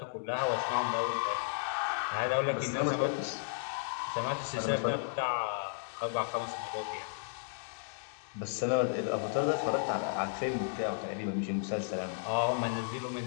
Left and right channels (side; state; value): right; silent; digital silence